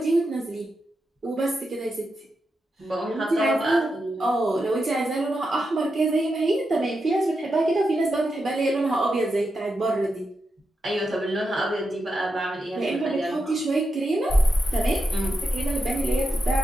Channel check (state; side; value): normal; both; correlation 0.87